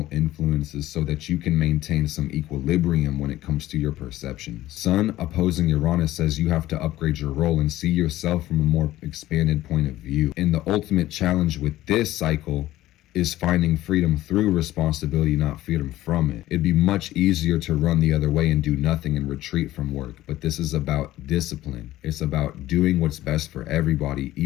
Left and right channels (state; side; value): quieter; right; 15.3 dB